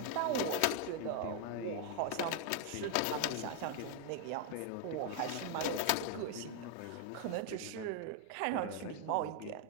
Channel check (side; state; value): both; different; correlation 0.00